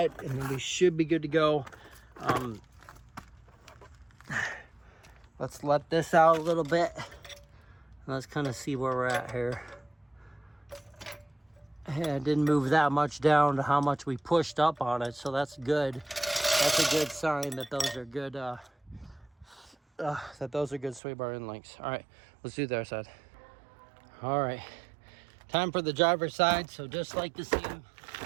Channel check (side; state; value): left; drops out; at 21.0 s